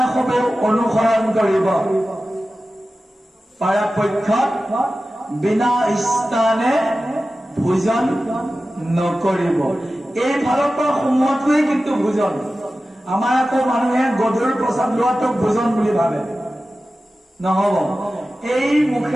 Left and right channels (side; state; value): both; normal; correlation 0.95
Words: অনুসৰণ কৰিব। পৰাপক্ষত বিনা স্থানে ভোজন নকৰিব। এই ফালৰ পৰা সোমোৱাটোৱেই কিন্তু ভোজন। আমাৰ আকৌ মানুহে গধুৰ প্ৰসাদ লোৱাটোক ভোজন বুলি ভাবে, নহব। এই